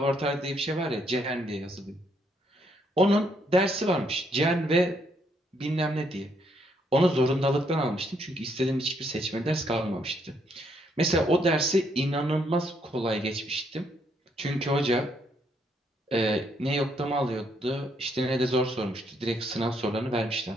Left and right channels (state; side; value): normal; both; correlation 0.72